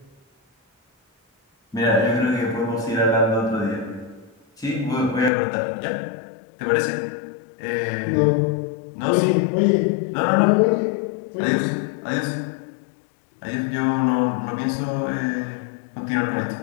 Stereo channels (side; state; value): right; drops out; at 5.3 s